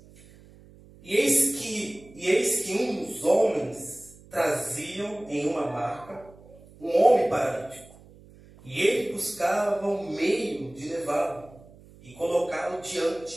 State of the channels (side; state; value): right; noise; hum, 23 dB below the sound